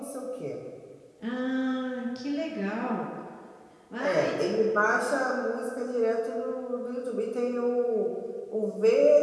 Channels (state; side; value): identical; both; correlation 1.00